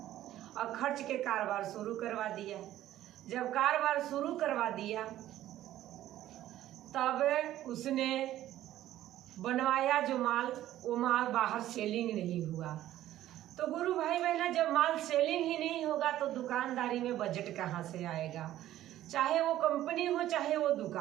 और खर्च के कारोबार शुरू करवा दिया। जब कारोबार शुरू करवा दिया तब उसने बनवाया जो माल, वो माल बाहर सेलिंग नहीं हुआ। तो गुरु भाई बहना, जब माल सेलिंग ही नहीं होगा तो दुकानदारी में बजट कहाँ से आएगा? चाहे वो कंपनी हो चाहे वो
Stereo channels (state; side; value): quieter; left; 13.4 dB